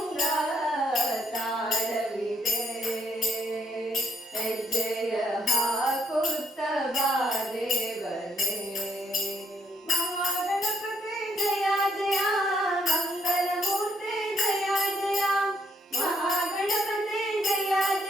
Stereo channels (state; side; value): normal; both; correlation 0.71